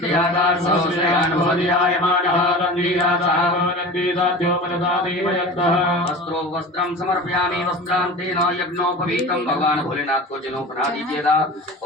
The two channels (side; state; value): both; normal; correlation 0.35